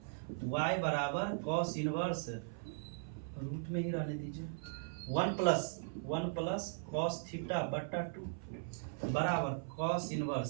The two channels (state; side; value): silent; left; 52 dB below the other